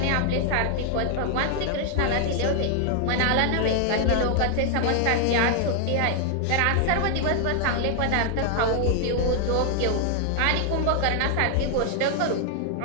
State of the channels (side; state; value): both; different; correlation 0.00